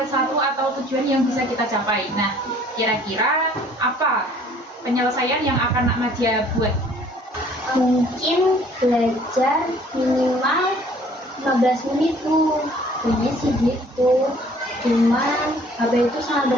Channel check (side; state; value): both; normal; correlation 0.56